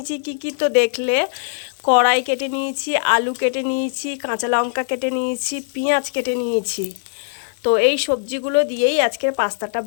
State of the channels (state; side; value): silent; right; 65 dB below the other